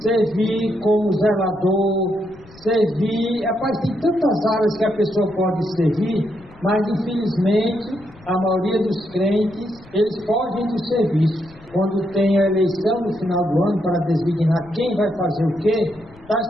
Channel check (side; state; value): left; noise; rumble, 24 dB below the sound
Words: servir como zelador, servir... Rapaz, tem tantas áreas que a pessoa pode servir, mas infelizmente a maioria dos crentes, eles fogem do serviço. Quando tem a eleição no final do ano para designar quem vai fazer o quê,